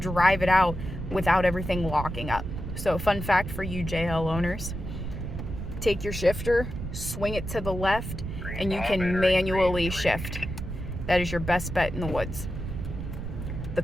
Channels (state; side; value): noise; right; rumble, 6 dB below the sound